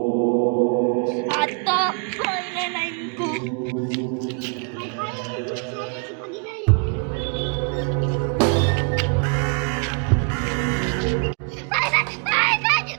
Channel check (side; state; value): left; quieter; 37.1 dB